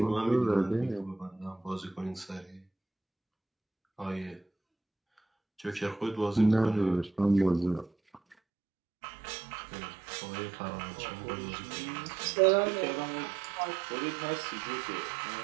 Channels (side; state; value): left; drops out; at 8.3 s